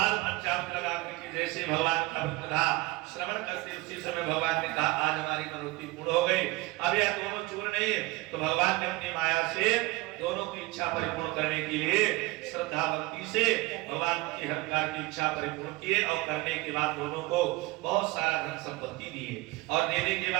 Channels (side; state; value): left; quieter; 21.4 dB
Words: पंचामृत लगा करके जैसे भगवान का व्रत कथा श्रवण करते उसी समय भगवान ने कहा, आज हमारी मनोती पूर्ण हो गई। अब यह दोनों चूर नहीं है तो भगवान ने अपनी माया से दोनों की इच्छा परिपूर्ण करने के लिए श्रद्धा भक्ति से भगवान की हर प्रकार की इच्छा परिपूर्ण किए और करने के बाद दोनों को बहुत सारा धन संपत्ति दिए। और देने के